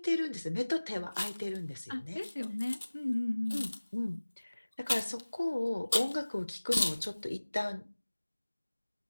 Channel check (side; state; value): both; inverted; correlation -1.00